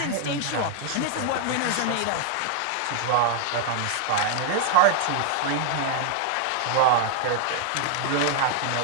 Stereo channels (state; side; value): different; both; correlation 0.00